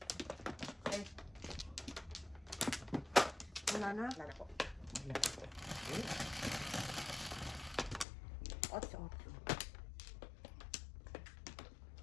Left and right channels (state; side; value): drops out; right; at 8.1 s